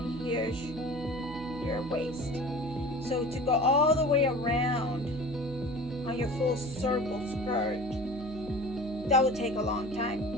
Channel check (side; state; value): right; noise; hum, 14 dB below the sound